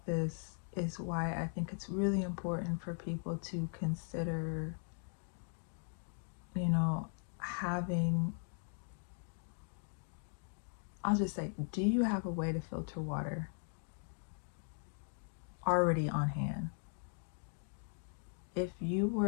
this is why I think it's really important for people to consider, you know, having, I'll just say, do you have a way to filter water already on hand? If you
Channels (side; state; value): right; silent; 52 dB below the other